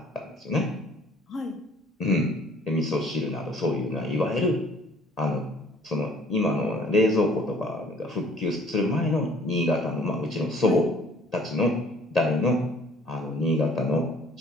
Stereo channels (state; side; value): normal; both; correlation 0.55